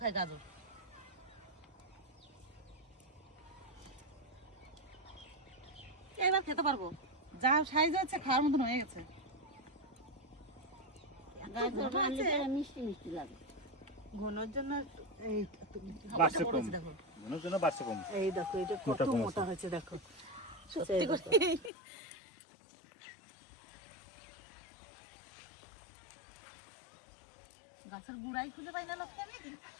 গাজর। এবার খেতে পারবো, যা সাইজ হচ্ছে খাওয়ার মতন হয়ে গেছে। গাজর রান্না করে মিষ্টি মিষ্টি লাগে। ঘনর জন্য এই বাড়ছে কম, মনের জন্য বাড়ছে কম। এই দেখো এটা কত মোটা কম মোটা আছে। হয়েছে দেখো, সত্যি করে। গাছের গুড়াই খুঁজে পাই না লক্ষ্মী আমি।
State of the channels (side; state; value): right; drops out; at 21.7 s